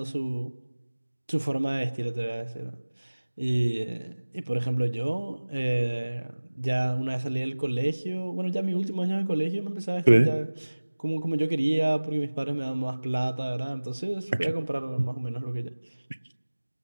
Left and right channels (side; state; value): both; inverted; correlation -1.00